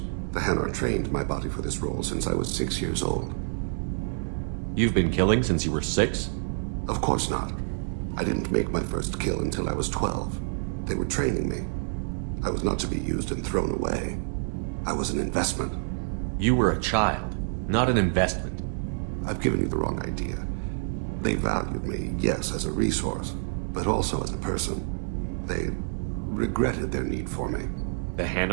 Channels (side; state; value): left; silent; digital silence